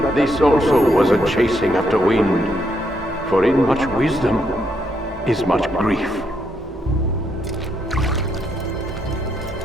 this also was a chasing after wind, for in much wisdom is much grief.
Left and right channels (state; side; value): normal; both; correlation 0.77